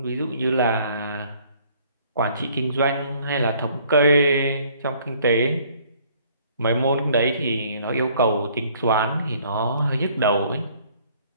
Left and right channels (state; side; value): inverted; both; correlation -0.59